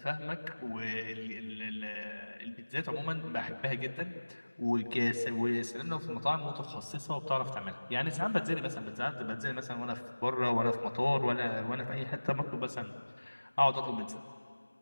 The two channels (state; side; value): inverted; both; correlation -1.00